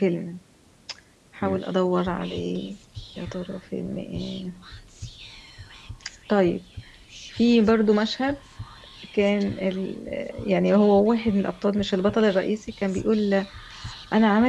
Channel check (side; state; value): both; identical; correlation 1.00